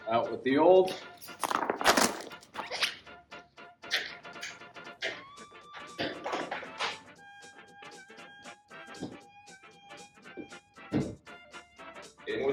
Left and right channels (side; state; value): both; identical; correlation 1.00